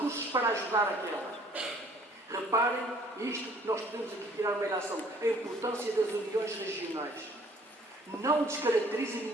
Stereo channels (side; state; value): both; normal; correlation 0.57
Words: para ajudar aquela. Reparem, isto nós podemos aqui tirar uma ilação, a importância das uniões regionais. Não descaracteriza